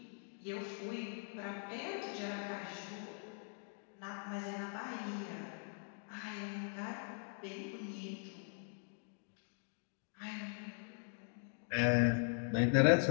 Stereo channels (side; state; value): right; silent; 50 dB below the other